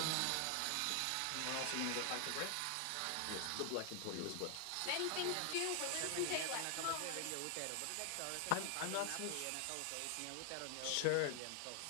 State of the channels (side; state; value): both; different; correlation 0.00